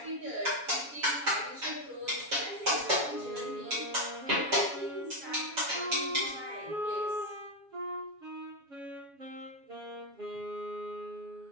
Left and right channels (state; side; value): late; left; 7.2 ms